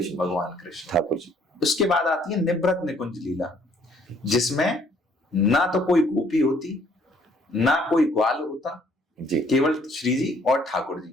भगवान कृष्ण ठाकुर जी। उसके बाद आती है निवृत्त निकुंज लीला जिसमें ना तो कोई गोपी होती ना कोई ग्वाल होता जी, केवल श्री जी और ठाकुर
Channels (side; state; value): both; normal; correlation 0.63